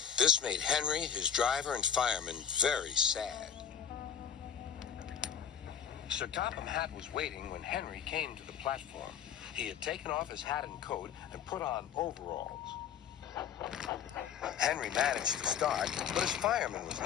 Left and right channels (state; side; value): quieter; right; 8.2 dB